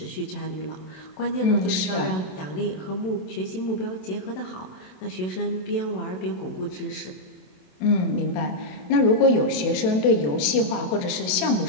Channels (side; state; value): right; late; 28 ms